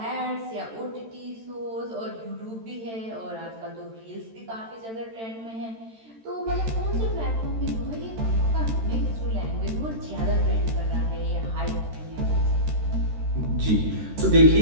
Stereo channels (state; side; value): late; left; 13 ms